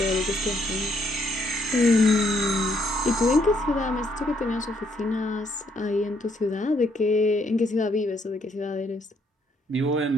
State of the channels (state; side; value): normal; both; correlation 0.71